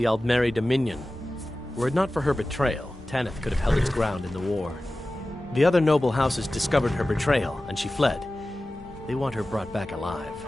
Aldmeri Dominion. Were it not for her betrayal, Tanith could have held its ground in the war. The other noble houses discovered her betrayal, and she fled. They want her brought back alive.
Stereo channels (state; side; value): normal; both; correlation 0.96